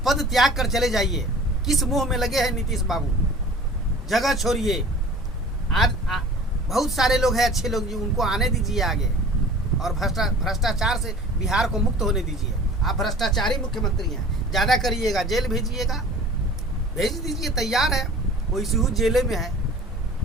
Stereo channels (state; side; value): normal; both; correlation 0.44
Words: पद त्याग कर चले जाइए। किस मोह में लगे हैं नीतीश बाबू? जगह छोड़िए। आज बहुत सारे लोग हैं अच्छे लोग, जो उनको आने दीजिए आगे, और भ्रष्टाचार से बिहार को मुक्त होने दीजिए। आप भ्रष्टाचारी मुख्यमंत्री हैं, ज़्यादा करिएगा, जेल भेजिएगा, भेज दीजिए, तैयार है। वो इसी जेल में है।